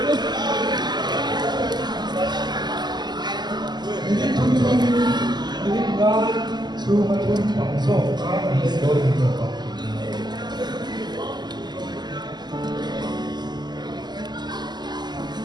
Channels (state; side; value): late; left; 0.21 ms